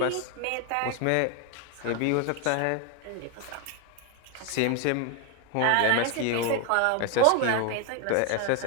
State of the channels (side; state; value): both; different; correlation 0.01